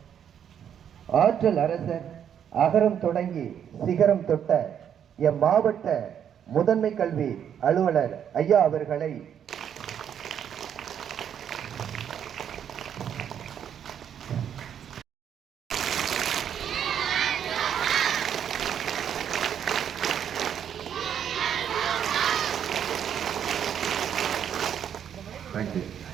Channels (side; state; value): left; quieter; 8.9 dB